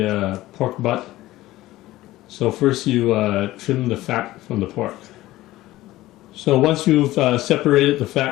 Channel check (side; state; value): right; quieter; 16.7 dB